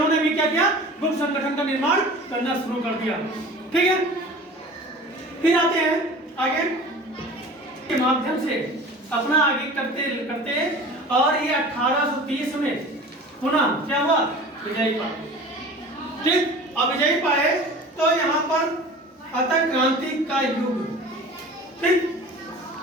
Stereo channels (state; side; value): normal; both; correlation 0.40